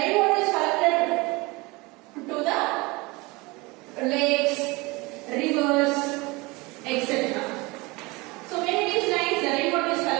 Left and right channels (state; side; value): quieter; left; 24.4 dB